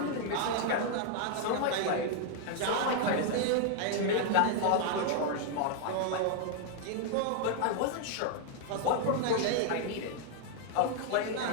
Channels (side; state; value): both; different; correlation 0.00